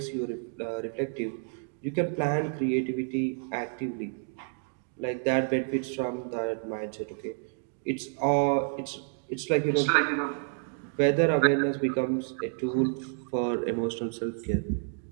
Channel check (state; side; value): silent; left; 57 dB below the other